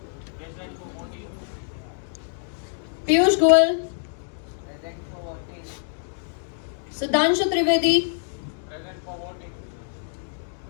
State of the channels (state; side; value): silent; right; digital silence